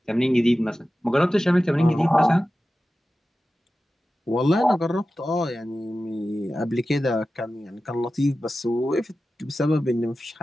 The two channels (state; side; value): normal; both; correlation 0.94